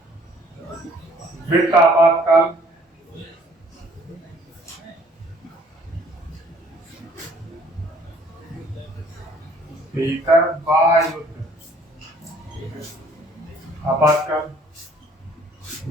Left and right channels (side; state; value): both; normal; correlation 0.58